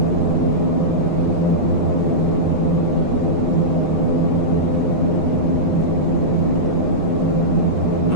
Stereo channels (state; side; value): late; right; 6.3 ms